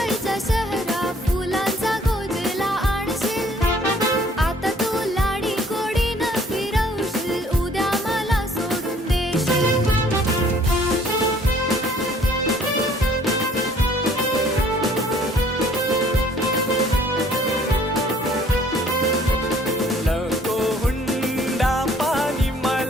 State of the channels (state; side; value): normal; both; correlation 0.58